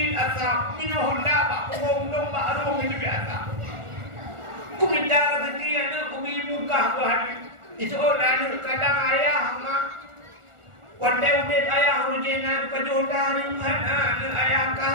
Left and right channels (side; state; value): left; late; 1.4 ms